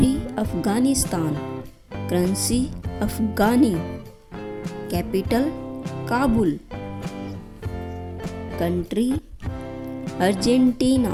Afghanistan, currency Afghani, capital Kabul. Country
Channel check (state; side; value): identical; both; correlation 1.00